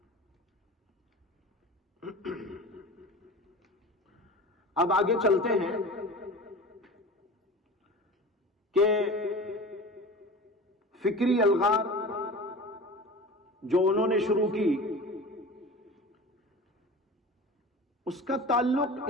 اب آگے چلتے ہیں کہ فکری الغار جو انہوں نے شروع کی، اس کا تعلق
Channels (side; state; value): both; normal; correlation 0.35